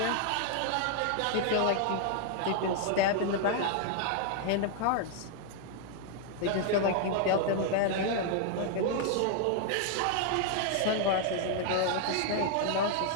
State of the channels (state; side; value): different; both; correlation 0.00